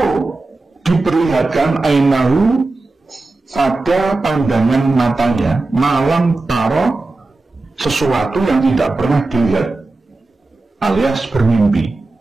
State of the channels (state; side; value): quieter; left; 3.3 dB